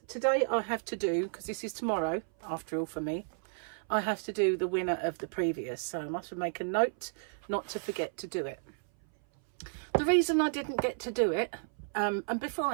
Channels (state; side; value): silent; left; 56 dB below the other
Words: today I have to do, because this is tomorrow after all for me, I have to do the winner of the previous, so I must make a note not to forget to do it. The reason I didn't get to do it, and before